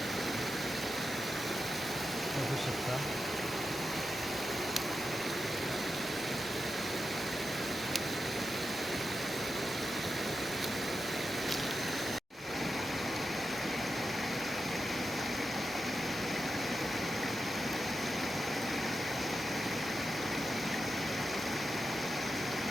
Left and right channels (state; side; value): normal; both; correlation 0.90